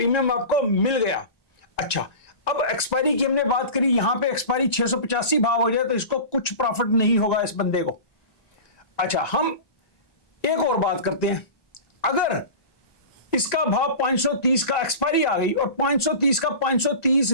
आपको मिल गया। अच्छा, अब एक्सपायरी की हमने बात करी, यहां पे एक्सपायरी 685 भाव हो जाए तो इसको कुछ प्रॉफिट नहीं होगा इस बंदे को। अच्छा, हम एक और बात करते हैं, अगर इसका भाव 530 का एक्सपायरी आ गई और 530 का 530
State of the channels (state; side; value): late; right; 1.9 ms